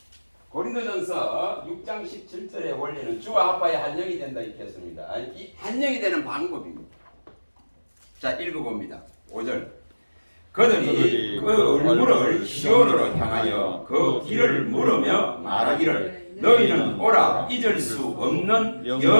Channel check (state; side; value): inverted; both; correlation -1.00